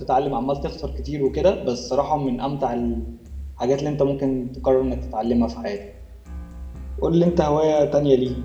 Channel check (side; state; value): both; identical; correlation 1.00